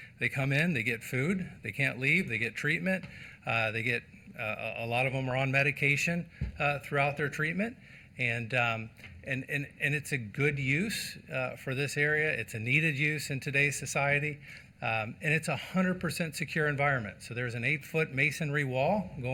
come in, they get food, they can't leave, they get treatment, they get a lot of them are on medication throughout their treatment, and it's a good use for this area. It's a needed use in today's society. And it's a 100% secure environment. So there's an 8-foot masonry wall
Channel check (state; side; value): identical; both; correlation 1.00